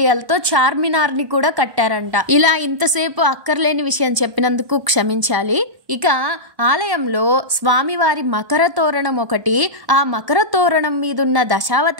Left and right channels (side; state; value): left; late; 1.0 ms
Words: తో చార్మినార్ ని కూడా కట్టారంట. ఇలా ఇంతసేపు అక్కర్లేని విషయం చెప్పినందుకు క్షమించాలి. ఇక ఆలయంలో స్వామివారి మకర తోరణం ఒకటి, ఆ మకర తోరణం మీదున్న